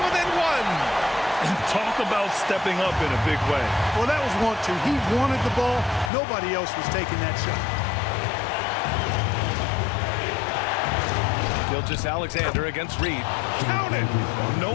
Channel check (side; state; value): right; drops out; at 6.1 s